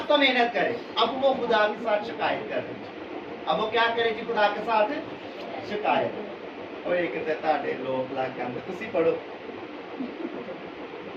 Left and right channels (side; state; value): both; identical; correlation 1.00